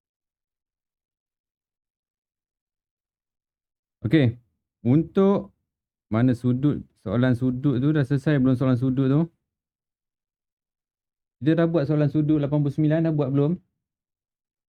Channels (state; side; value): identical; both; correlation 1.00